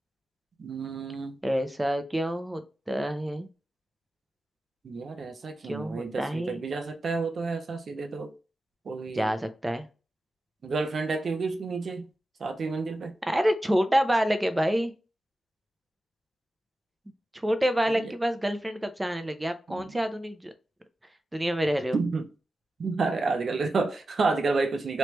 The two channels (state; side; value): normal; both; correlation 0.93